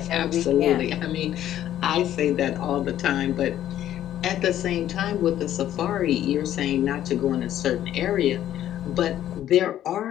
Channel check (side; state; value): right; quieter; 11.9 dB